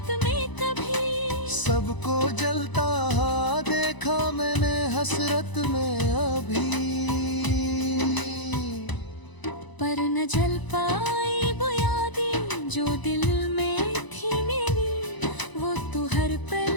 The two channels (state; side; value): late; right; 1.0 ms